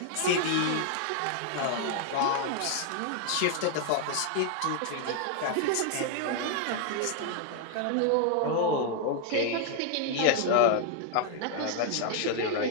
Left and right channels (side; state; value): both; different; correlation 0.00